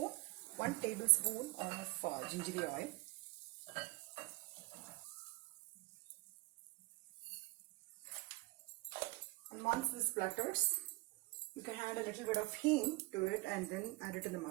of gingery oil. And once this splutters, you can add a little bit of hing to it and then add it in the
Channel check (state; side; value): quieter; left; 22.8 dB